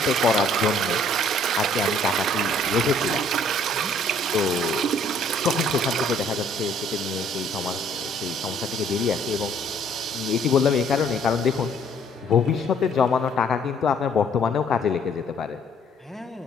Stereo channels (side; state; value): both; normal; correlation 0.61